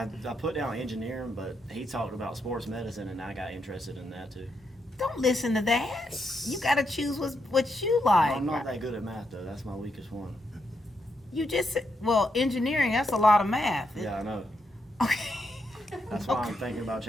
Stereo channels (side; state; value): both; normal; correlation 0.81